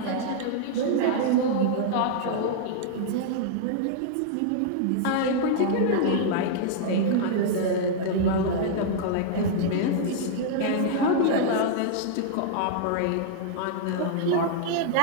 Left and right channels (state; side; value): different; both; correlation -0.01